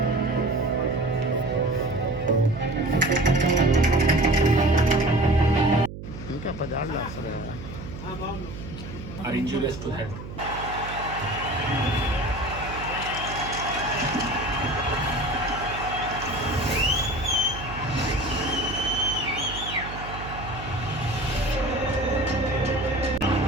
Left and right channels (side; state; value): right; noise; hum, 11 dB below the sound